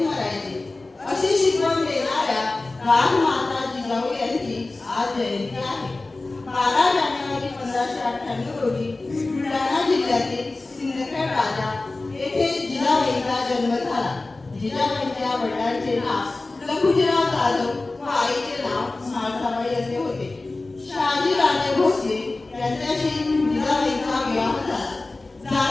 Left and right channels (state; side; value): quieter; right; 3.2 dB